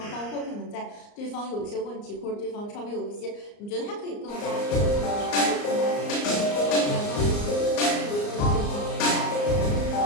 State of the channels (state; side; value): late; right; 34 ms